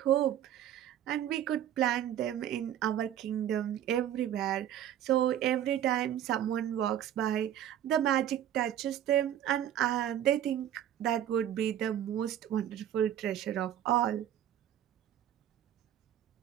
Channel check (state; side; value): quieter; left; 11.1 dB